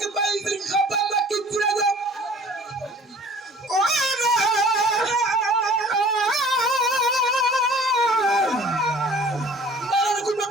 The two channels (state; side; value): normal; both; correlation 0.49